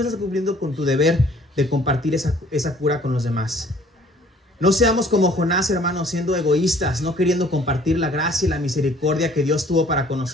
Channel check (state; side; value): normal; both; correlation 0.56